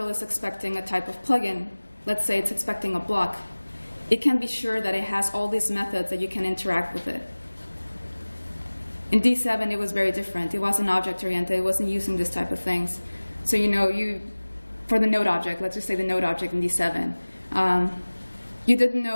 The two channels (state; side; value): inverted; both; correlation -1.00